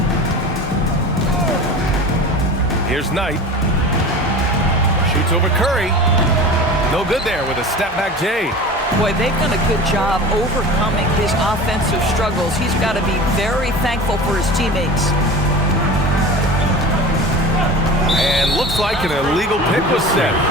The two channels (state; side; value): normal; both; correlation 0.35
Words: Here's Knight. Shoots over Curry. No good there with a step-back J. Boy, they've done a good job overcoming his offensive struggles. He's got to be very thankful for his teammates. And looks like an illegal pick was set.